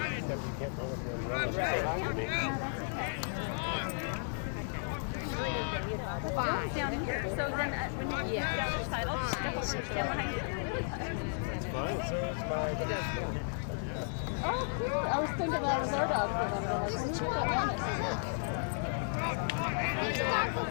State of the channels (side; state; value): right; silent; digital silence